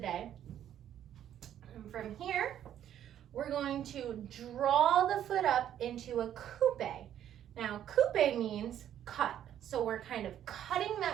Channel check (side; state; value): left; quieter; 10.6 dB